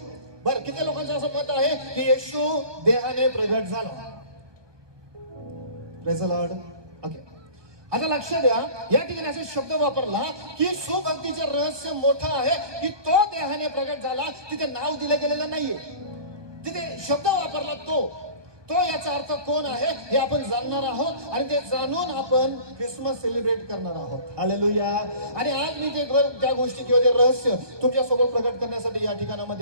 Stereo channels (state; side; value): late; left; 1.2 ms